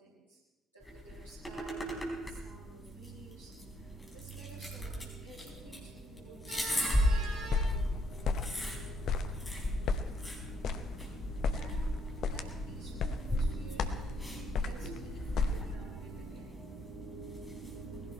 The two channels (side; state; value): both; normal; correlation 0.72